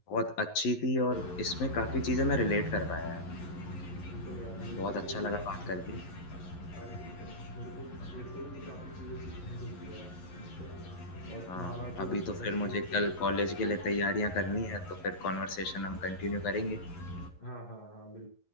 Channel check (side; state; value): right; late; 11 ms